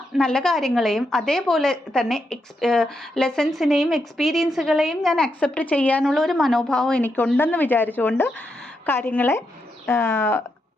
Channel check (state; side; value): normal; both; correlation 0.83